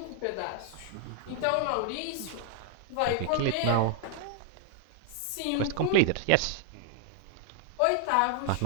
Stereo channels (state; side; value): different; both; correlation 0.00